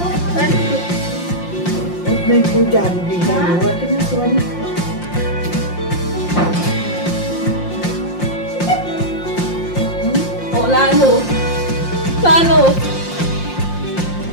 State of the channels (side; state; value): right; late; 5.7 ms